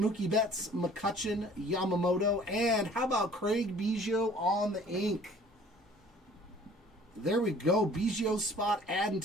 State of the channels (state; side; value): normal; both; correlation 0.52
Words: Betts, McCutcheon, Yamamoto, and how about Craig Biggio on the ink? There we go. Biggio spot adding